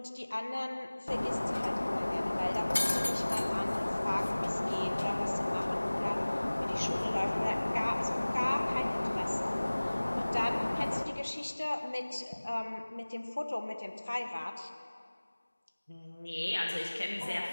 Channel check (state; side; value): inverted; both; correlation -1.00